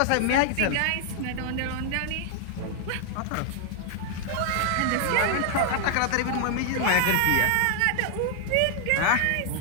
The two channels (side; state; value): both; different; correlation 0.00